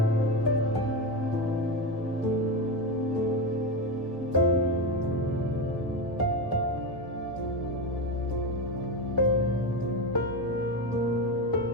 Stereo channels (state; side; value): noise; right; hum, 24 dB below the sound